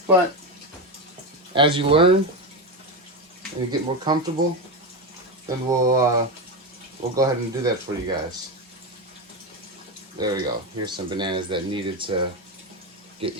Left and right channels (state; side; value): normal; both; correlation 0.14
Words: But as you learn and you get more comfortable, then we'll go ahead and do that for you guys. There we go. Here's some bananas that needed to get